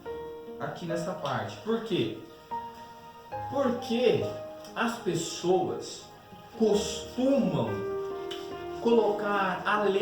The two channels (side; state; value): both; identical; correlation 1.00